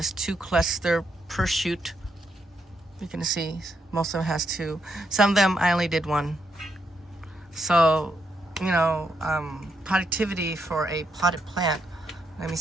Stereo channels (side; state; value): both; normal; correlation 0.79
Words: 2 cluster per shoot. You can see most of them has 2. Some of them I only did 1. So, you know, productivity for a potted plant, let me